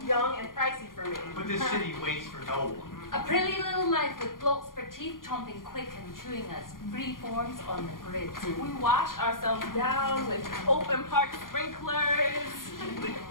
young, and pricey for me. But this city waits for no one. A pretty little life with blokes for teeth chomping quick and chewing us free forms on the grid. We wash ourselves down with open park sprinklers.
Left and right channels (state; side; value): late; right; 0.90 ms